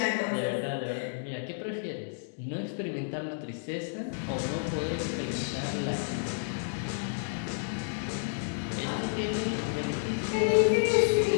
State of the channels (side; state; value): right; silent; digital silence